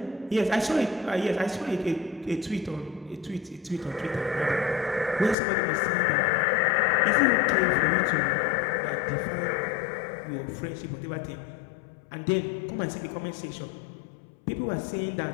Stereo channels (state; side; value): drops out; right; at 5.4 s